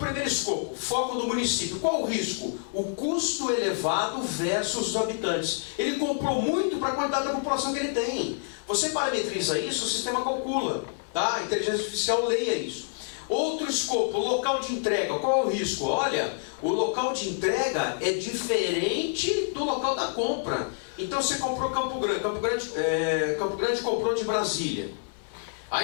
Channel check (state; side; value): silent; right; 60 dB below the other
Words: escopo, foco do município. Qual o risco? O custo elevado versus os habitantes. Ele comprou muito para a quantidade da população que ele tem. Você parametriza isso, o sistema calcula. Tá? A inteligência artificial leia isso. Outro escopo, local de entrega. Qual é o risco? Olha, o local de entrega é diferente do local da compra. Então você comprou Campo Grande. Campo Grande comprou de Brasília.